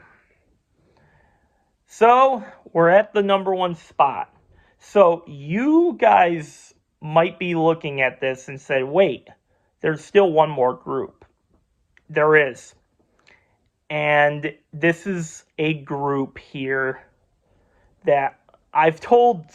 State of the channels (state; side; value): identical; both; correlation 1.00